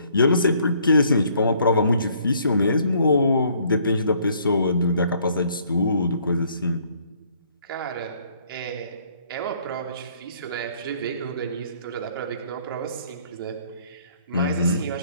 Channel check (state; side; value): inverted; both; correlation -0.64